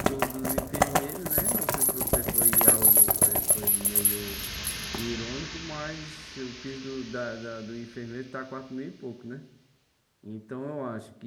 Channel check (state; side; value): identical; both; correlation 1.00